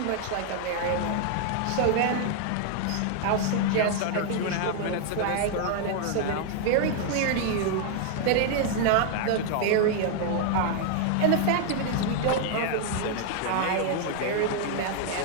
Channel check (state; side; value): different; both; correlation 0.00